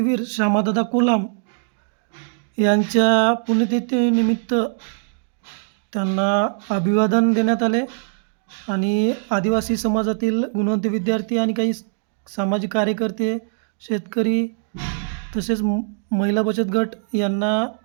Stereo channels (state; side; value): silent; left; digital silence